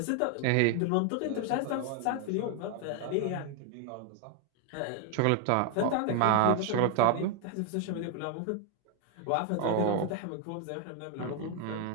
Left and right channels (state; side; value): different; both; correlation 0.00